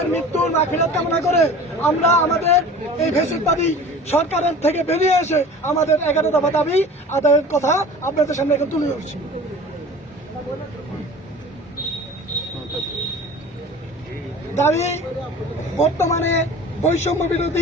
মৃত্যুর মাগফিরাত কামনা করে আমরা আমাদের এই ফ্যাসিবাদী সরকারের থেকে বেরিয়ে এসে আমাদের 11 দফা দাবি আদায়ের কথা আপনাদের সামনে এখন তুলে ধরছি। দাবি বর্তমানে বৈষম্য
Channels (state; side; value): normal; both; correlation 0.41